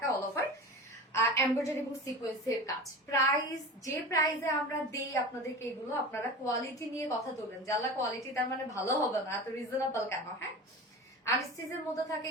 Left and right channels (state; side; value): normal; both; correlation 0.31